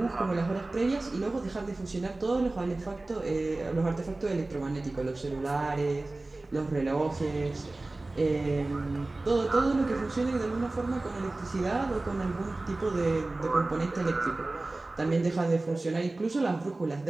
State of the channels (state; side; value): quieter; left; 3.0 dB